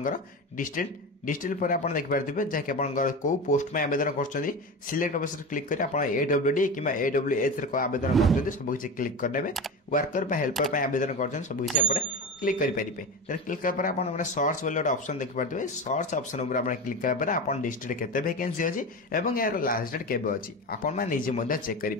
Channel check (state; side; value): normal; both; correlation 0.24